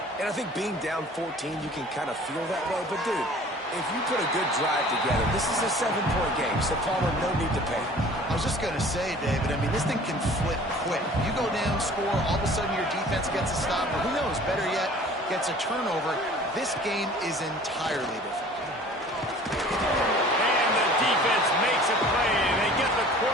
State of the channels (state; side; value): normal; both; correlation 0.48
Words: And I think being down 14, you can kind of feel that way. But, dude, if you put a good drive together, this is a 7-point game, so Palmer, no need to pay. I was was just going to say, David, I mean, this thing can flip quick. You go down, score, all of a sudden your defense gets a stop, or who knows, better yet, gets a turnover. This game is entirely different. And the defense makes a play, and they get the